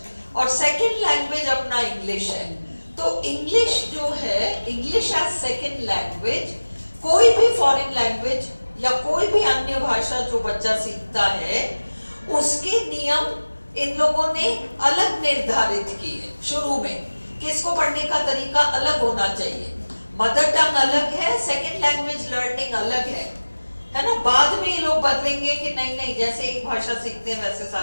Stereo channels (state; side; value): inverted; both; correlation -1.00